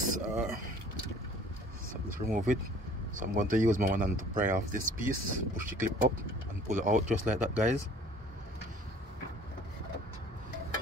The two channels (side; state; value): both; normal; correlation 0.53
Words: So let's remove it. So I'm going to use my one hand to pry off this piece, push the clip up and pull it out just like that, guys.